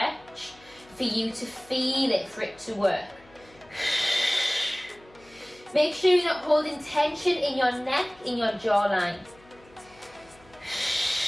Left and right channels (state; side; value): noise; left; hum, 27 dB below the sound